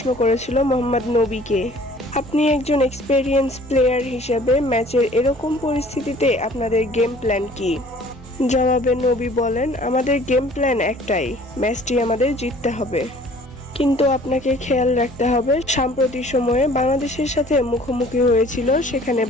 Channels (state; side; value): normal; both; correlation 0.52